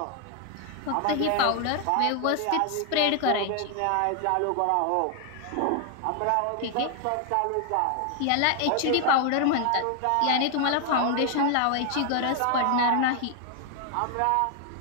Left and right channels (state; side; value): different; both; correlation 0.00